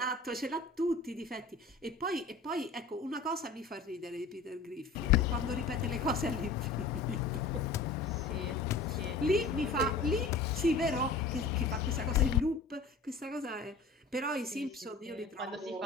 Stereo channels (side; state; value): right; quieter; 3.9 dB